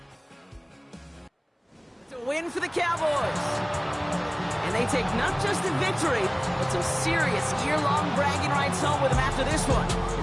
Win for the Cowboys. And they take not just the victory, but some serious year-long bragging rights home with them after this one,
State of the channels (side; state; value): both; identical; correlation 1.00